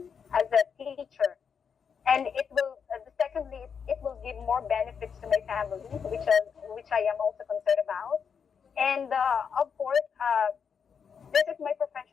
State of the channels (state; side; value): quieter; right; 6.7 dB